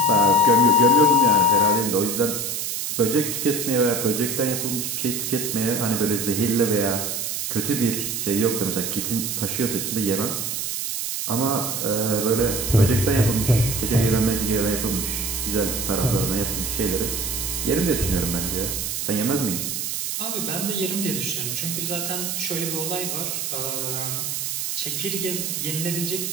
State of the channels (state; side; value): noise; right; hiss, 2 dB below the sound